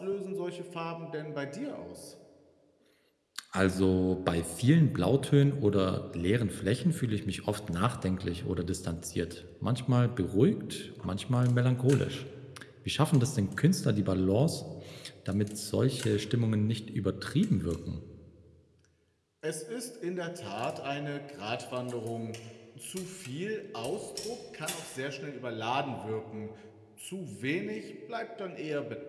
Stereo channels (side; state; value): both; identical; correlation 1.00